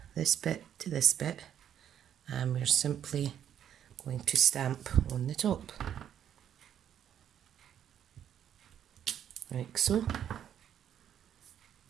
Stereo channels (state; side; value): quieter; left; 9.6 dB